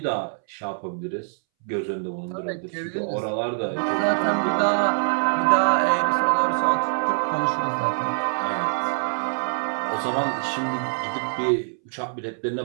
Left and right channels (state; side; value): silent; left; 62 dB below the other